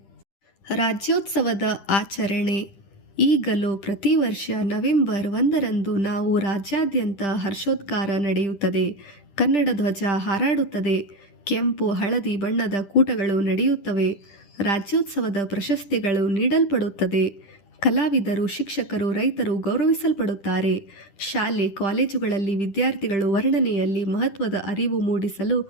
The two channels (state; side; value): late; right; 10 ms